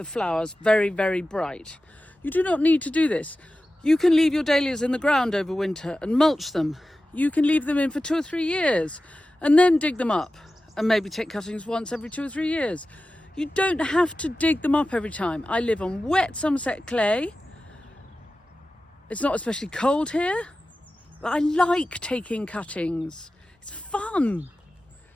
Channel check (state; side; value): normal; both; correlation 0.94